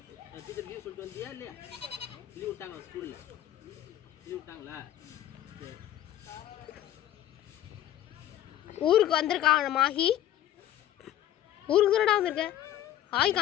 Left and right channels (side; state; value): right; quieter; 12.4 dB